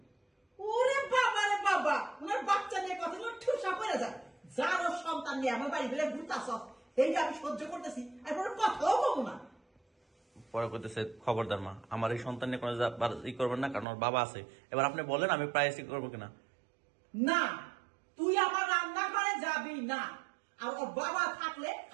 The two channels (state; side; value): drops out; left; at 13.9 s